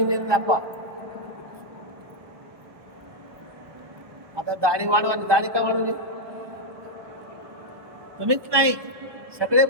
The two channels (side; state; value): left; late; 1.2 ms